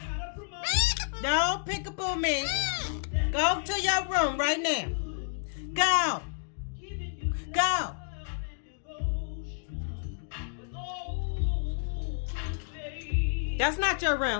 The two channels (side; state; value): right; silent; digital silence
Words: Don't pick up on me. Go to your room right now. Go. Go. That's not your